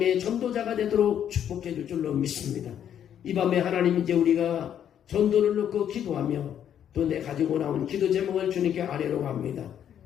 전도자가 되도록 축복해 줄 줄로 믿습니다. 이 밤에 하나님 이제 우리가 전도를 놓고 기도하며 또 내 가지고 나온 기도 제목을 주님께 아뢰러 갑니다.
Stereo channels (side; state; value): right; quieter; 9.6 dB